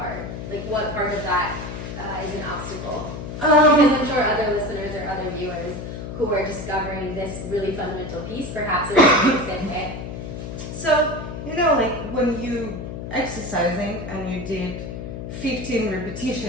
Like, what part of that is an obstacle? Because I'm sure other listeners or other viewers who are discovering this really fundamental piece, perhaps it's the same way. So, like when you exercising and you did 15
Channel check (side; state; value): left; noise; hum, 8 dB below the sound